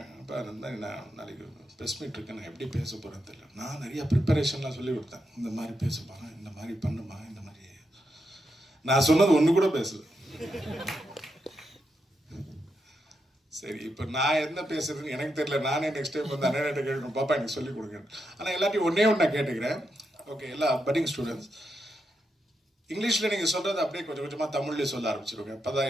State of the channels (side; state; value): both; normal; correlation 0.84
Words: அப்போ இருந்தால் நான் நாளைக்கு ப்ரெஸ் மீட் இருக்கேன், நான் எப்படி பேச போகிறேன்னு தெரியல. நான் நிறையா ப்ரிப்பரேஷன்லாம் சொல்லி கொடுத்தேன். இந்த மாதிரி பேச போகிறேன், இந்த மாதிரி பண்ணுமா, இந்த மாதிரி நான் சொன்னது ஒன்று கூட பேசல. சரி, இப்போ நான் என்ன பேசுறதுன்னு எனக்கு தெரியல. நானே நெக்ஸ்ட் டைம் வந்து அண்ணன் கேட்கணும், பாப்பா எனக்கு சொல்லிக் கொடுங்க. ஆனால் எல்லாத்தையும் ஒன்றே ஒன்று நான் கேட்டுக்கிறேன். ஓகே, எல்லா பட்டிங் ஸ்டூடெண்ட்ஸ், இங்கிலீஷில் நீங்கள் சொல்கிறது அப்படியே கொஞ்சம் கொஞ்சமாக தமிழ்லேயே சொல்ல ஆரம்பிச்சிருங்க. அப்போ தான்